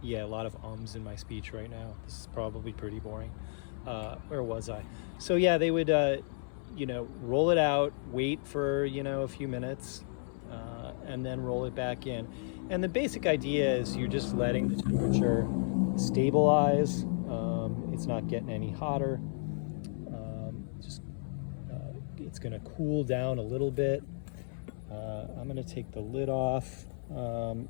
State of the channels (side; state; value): right; silent; 56 dB below the other